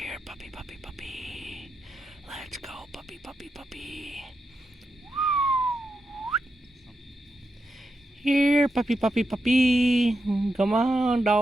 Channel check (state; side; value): normal; both; correlation 0.87